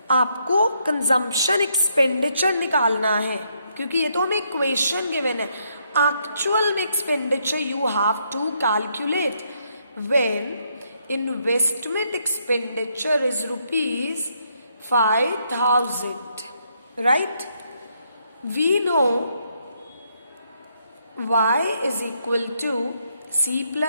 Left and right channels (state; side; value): inverted; both; correlation -0.74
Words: आपको consumption expenditure निकालना है क्योंकि ये तो हमें equation given है। Actual में expenditure you have to calculate when investment expenditure is ₹5000, right. we know y is equal to c